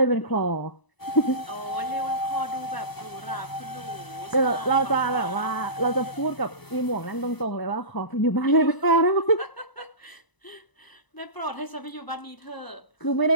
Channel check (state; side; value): late; right; 1.0 ms